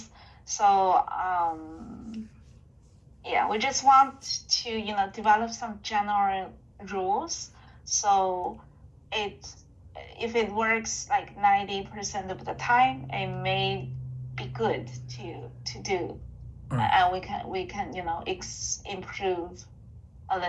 So yeah, we just want to develop some general rules. So if it works like 90% of the time, it may be good to do, Alright. and we can improve a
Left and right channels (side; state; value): both; identical; correlation 1.00